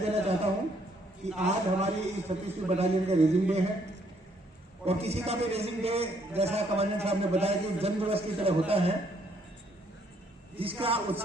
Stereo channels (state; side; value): normal; both; correlation 0.68